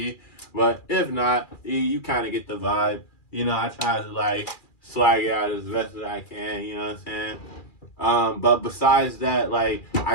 but if not, you kind of get the vibe. You know, I try to swag it out as best as I can. You know what I'm saying? But besides that,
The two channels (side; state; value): right; late; 2.4 ms